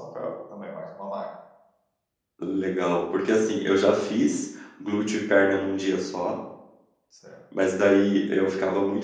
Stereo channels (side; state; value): both; identical; correlation 1.00